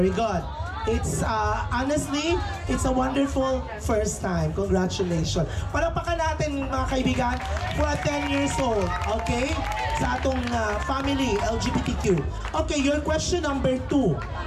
good. It's, honestly, it's a wonderful first time. Congratulations. Palakpakan natin, mga kaibigan, for a 10 years old. Okay? Sa atong family, LGBTQ. Okay, your question number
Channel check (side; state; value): both; identical; correlation 1.00